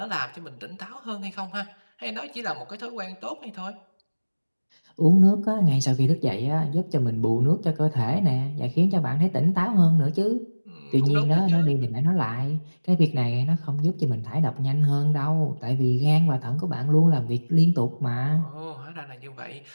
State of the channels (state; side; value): inverted; both; correlation -1.00